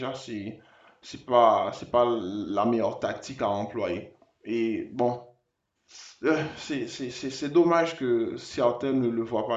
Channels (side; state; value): both; identical; correlation 1.00